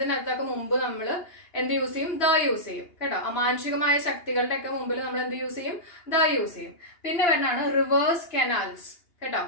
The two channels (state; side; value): late; right; 2.8 ms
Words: മുമ്പ് നമ്മൾ എന്ത് യൂസ് ചെയ്യും? യൂസ് ചെയ്യും കേട്ടോ. അമാനുഷികമായ ശക്തികളുടെ ഒക്കെ മുമ്പിൽ നമ്മൾ എന്ത് യൂസ് ചെയ്യും? യൂസ് ചെയ്യും. പിന്നെ വരുന്നതാണ് റിവേഴ്സ്, കനാൽസ് കേട്ടോ.